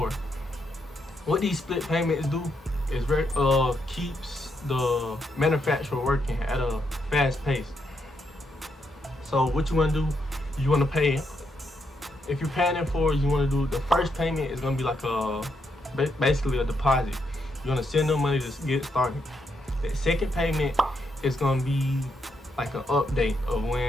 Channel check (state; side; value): normal; both; correlation 0.79